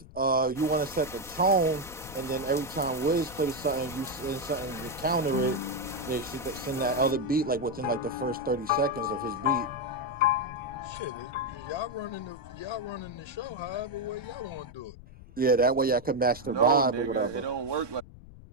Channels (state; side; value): noise; left; rumble, 18 dB below the sound